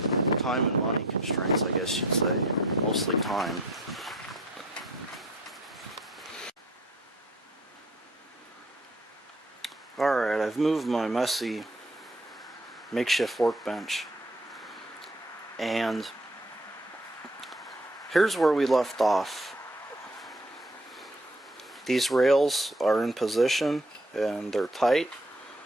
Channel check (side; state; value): both; normal; correlation 0.56